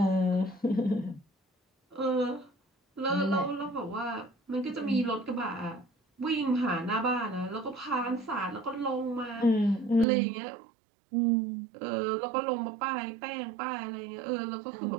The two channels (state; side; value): drops out; left; at 10.1 s